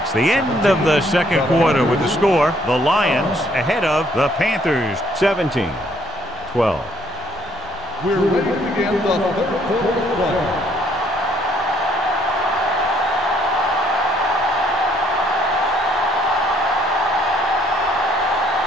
the end of the second quarter with the score. The Lions ahead of the Panthers 17-12. We're ready to begin the third quarter of play.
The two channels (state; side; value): noise; left; rumble, 24 dB below the sound